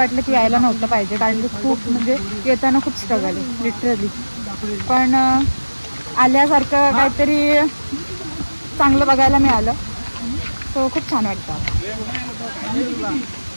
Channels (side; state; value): both; inverted; correlation -1.00